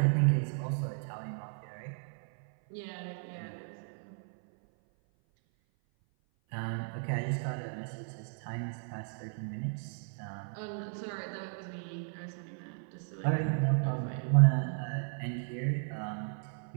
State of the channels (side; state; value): left; silent; 55 dB below the other